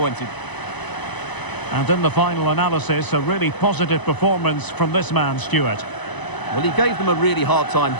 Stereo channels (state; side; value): late; right; 1.0 ms